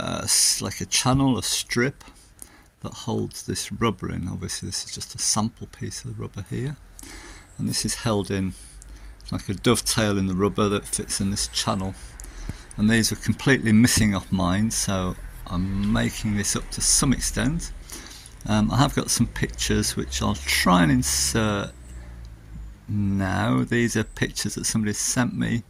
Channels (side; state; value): both; identical; correlation 1.00